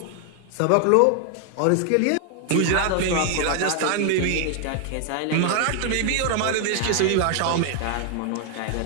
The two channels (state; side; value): different; both; correlation 0.00